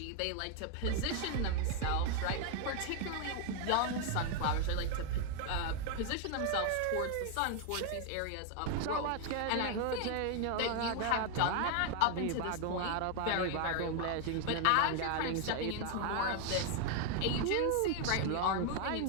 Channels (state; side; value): different; both; correlation 0.01